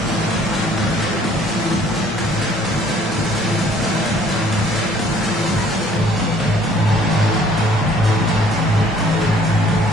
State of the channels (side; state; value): both; normal; correlation 0.58